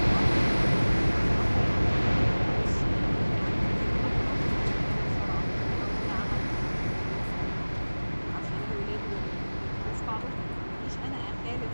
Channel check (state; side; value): inverted; both; correlation -1.00